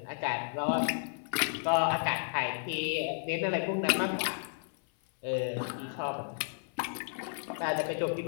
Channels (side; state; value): right; silent; 56 dB below the other